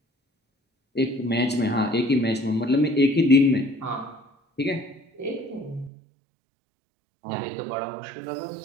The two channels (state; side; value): drops out; left; at 5.9 s